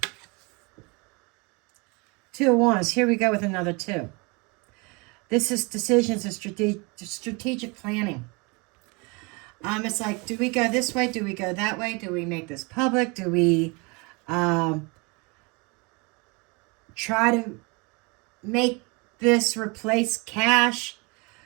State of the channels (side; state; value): left; quieter; 28.7 dB